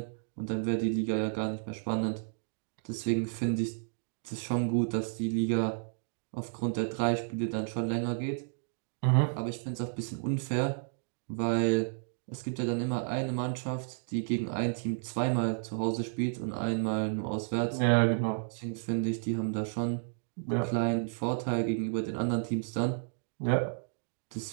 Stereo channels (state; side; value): silent; left; digital silence